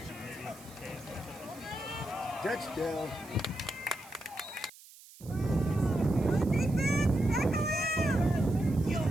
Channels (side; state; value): right; noise; hiss, 21 dB below the sound